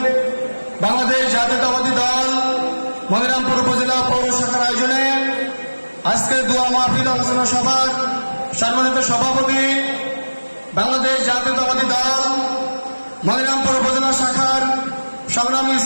বাংলাদেশ জাতীয়তাবাদী দল মনিরামপুর উপজেলা পৌর শাখার আয়োজনে আজকের দোয়া মাহফিল আলোচনা সভার সম্মানিত সভাপতি, বাংলাদেশ জাতীয়তাবাদী দল মনিরামপুর উপজেলা শাখার সংগ্রামী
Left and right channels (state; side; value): inverted; both; correlation -1.00